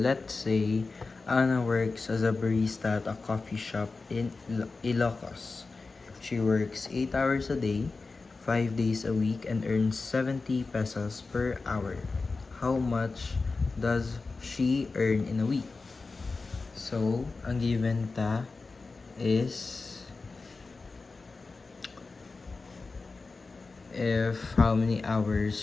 say Anna works as a barista at a coffee shop in Ilocos. She works 8 hours a day, 5 days a week, and earns 70 pesos per hour. How much does she earn in a week? So, ang given ta is if how many hours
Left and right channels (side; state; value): right; quieter; 4.0 dB